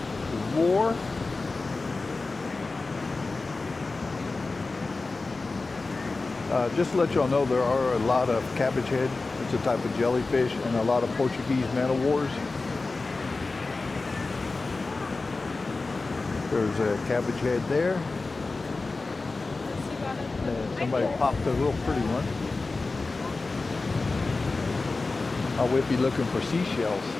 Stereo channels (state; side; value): quieter; right; 3.6 dB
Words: roar. Just to let y'all know, there are a lot of cabbage head. It's a type of jellyfish, and a lot of Portuguese man-o'-wars. There's a cabbage head there. And somebody popped a real pretty one. I would be looking for seashells.